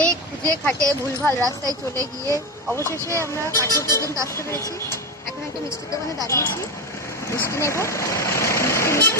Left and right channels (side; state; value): both; normal; correlation 0.17